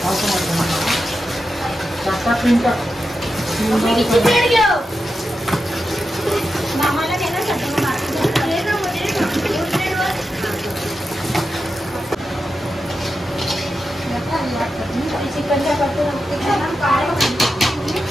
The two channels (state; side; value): normal; both; correlation 0.90